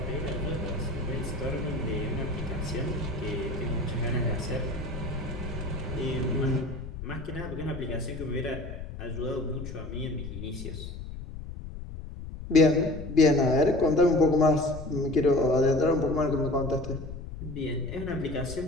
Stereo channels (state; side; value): noise; left; rumble, 10 dB below the sound